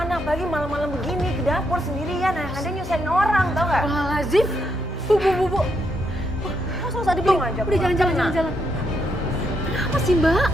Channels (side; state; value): both; normal; correlation 0.78